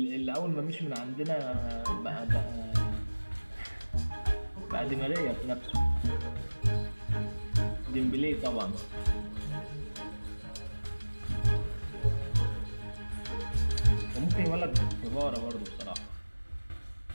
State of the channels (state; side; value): inverted; both; correlation -1.00